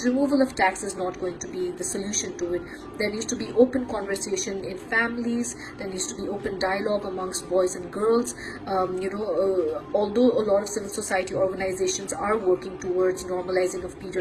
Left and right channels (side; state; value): both; identical; correlation 1.00